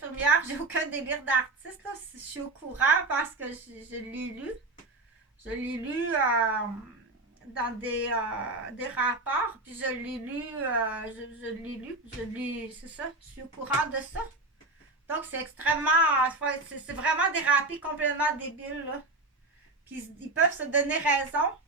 j'ai aucun délire d'artiste, là. Je suis au courant parce que je l'ai lu. Je l'ai lu dans des rapports, puis je l'ai lu, c'est ça, je suis au courant de ça. Donc, c'est extrêmement, c'est vraiment dérapé, complètement débile, là. Puis, ils peuvent se donner raison.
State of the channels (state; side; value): quieter; left; 3.0 dB